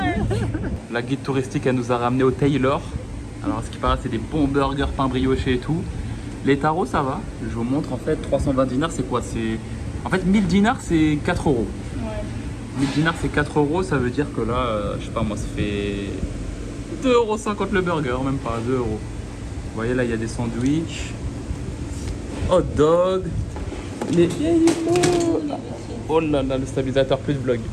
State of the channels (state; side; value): identical; both; correlation 1.00